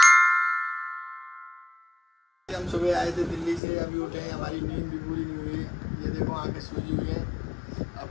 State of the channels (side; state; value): right; drops out; at 3.6 s